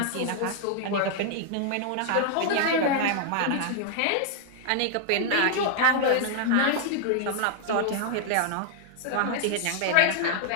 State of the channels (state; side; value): different; both; correlation -0.01